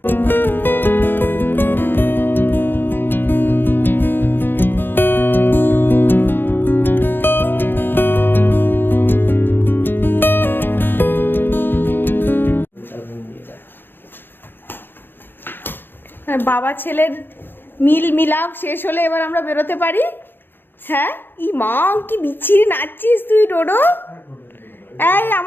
বাবা ছেলের মিলাপ শেষ হলে এবার আমরা বেরোতে পারি। হ্যাঁ, ই মা কি বিচ্ছিরি নাচছিস তুই ডোডো। এই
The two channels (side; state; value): right; late; 0.099 ms